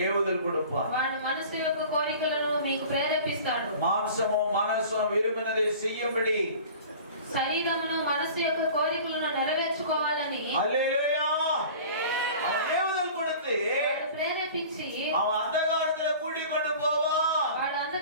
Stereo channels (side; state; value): both; inverted; correlation -0.42